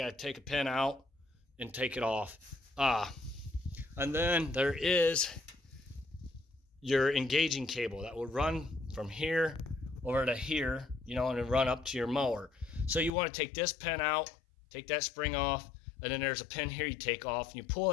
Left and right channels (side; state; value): right; drops out; at 13.1 s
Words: to take a pin out and take it off. And then there is your engaging cable that will run from here over to here, and run up to your mower. So you want to take this pin out, take that spring off, and then there's a pin here you take off, and you pull